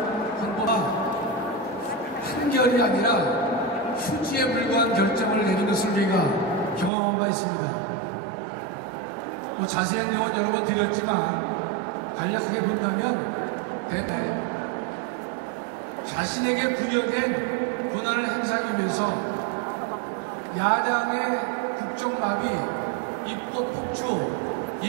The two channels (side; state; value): left; drops out; at 6.9 s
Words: 헌법화 한결이 아니라 휴지에 불과한 결정을 내린 것을 저희가 경험한 바 있습니다. 자세한 내용은 여러 번 드렸지만 간략하게 본다면 대개 자신에게 부여된 권한을 행사하기 위해서 야당의 국정마비, 입법 폭주,